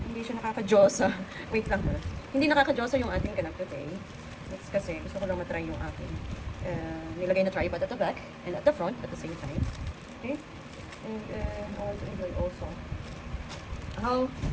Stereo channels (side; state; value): both; identical; correlation 1.00